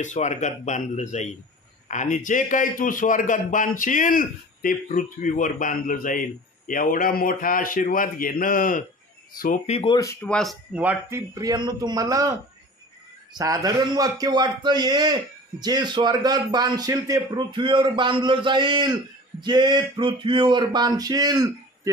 स्वर्गात बांधलं जाईल, आणि जे काही तू स्वर्गात बांधशील ते पृथ्वीवर बांधलं जाईल. एवढा मोठा आशीर्वाद घेणं सोपी गोष्ट वाटते प्रियांनो तुम्हाला? साधारण वाक्य वाटतं हे, जे स्वर्गात बांधशील ते पृथ्वीवर बांधलं जाईल, जे पृथ्वीवर बांधशील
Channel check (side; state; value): both; normal; correlation 0.40